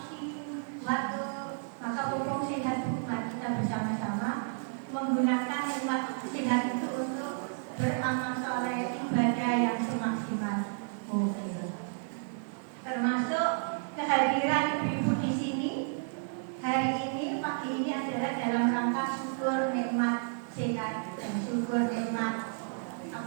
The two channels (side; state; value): left; silent; digital silence